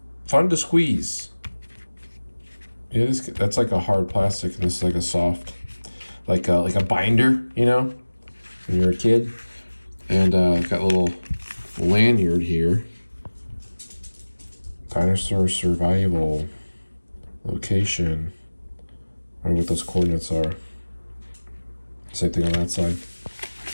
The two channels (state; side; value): inverted; both; correlation -1.00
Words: fun to squeeze. Yeah, that's like a hard plastic, and this is like a soft, like a binder, you know, when you're a kid. And got a little lanyard here. Dinosaur survival location. I wonder what those coordinates are. Same thing on that side.